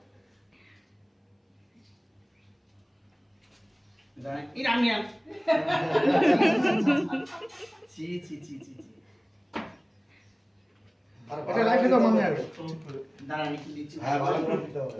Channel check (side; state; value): both; identical; correlation 1.00